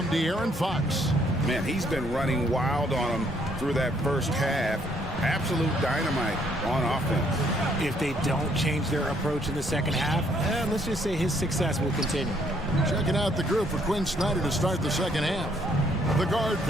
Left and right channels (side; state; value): both; normal; correlation 0.67